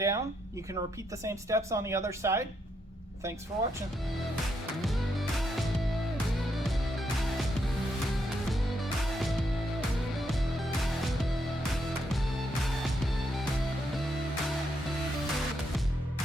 you can repeat the same steps on the other side. Thanks for watching.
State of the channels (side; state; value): both; normal; correlation 0.78